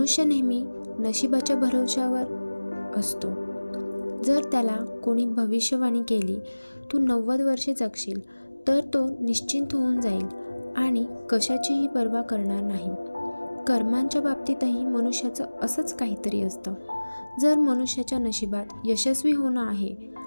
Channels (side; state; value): both; inverted; correlation -1.00